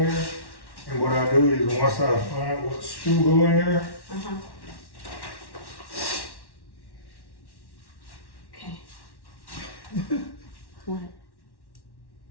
And what I do is once I find what screw go in there, Okay. What?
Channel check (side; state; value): right; late; 1.1 ms